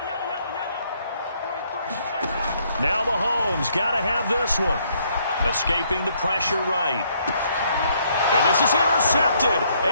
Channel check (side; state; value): both; inverted; correlation -0.69